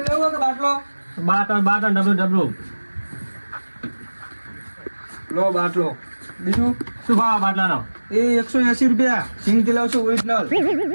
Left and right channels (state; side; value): inverted; both; correlation -1.00